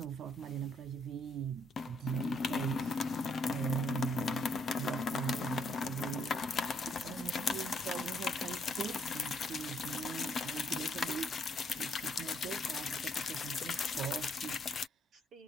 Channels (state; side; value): normal; both; correlation 0.71